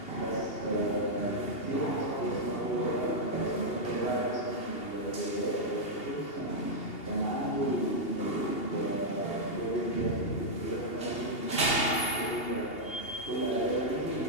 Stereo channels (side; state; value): right; late; 2.8 ms